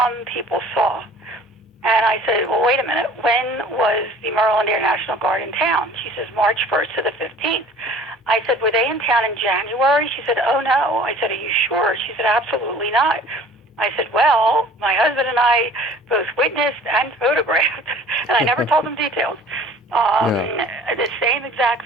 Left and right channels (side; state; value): both; normal; correlation 0.48